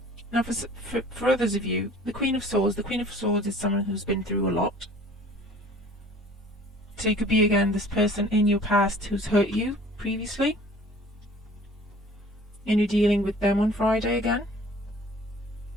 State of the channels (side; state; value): both; normal; correlation 0.49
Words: Now for others of you, the Queen of Swords is someone who's been through a lot. So you could be again this person in your past who's hurt you previously, and you're dealing with them on Friday again.